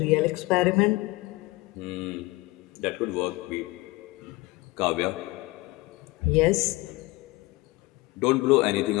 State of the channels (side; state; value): right; quieter; 21.5 dB